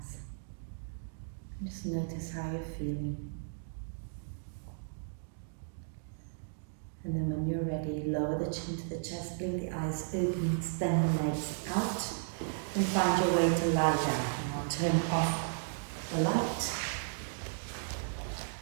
Just notice how you're feeling. And then when you're ready, lower the chin to the chest, blink the eyes open, extend the legs out, and find your way to lie down. And I'll turn off the light.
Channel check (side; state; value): left; silent; digital silence